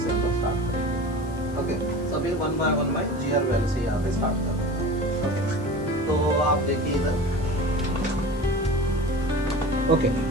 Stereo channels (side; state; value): left; noise; hiss, 23 dB below the sound